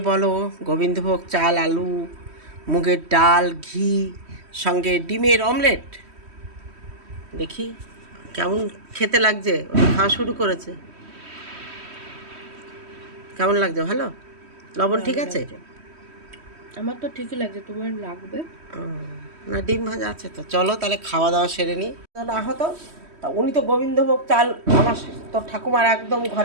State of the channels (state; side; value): late; left; 3.1 ms